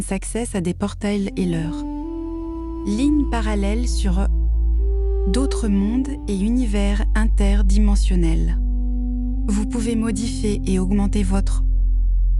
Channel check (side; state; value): both; identical; correlation 1.00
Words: accès à des portails et leurs lignes parallèles sur d'autres mondes et univers interdimensionnels. Vous pouvez modifier et augmenter votre